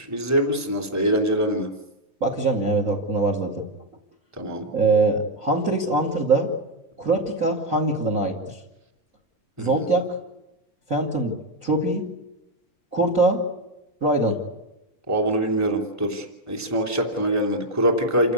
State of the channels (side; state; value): both; normal; correlation 0.03